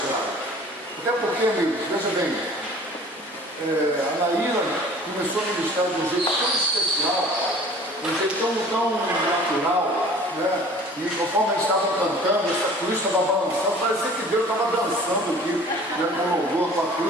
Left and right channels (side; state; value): both; normal; correlation 0.47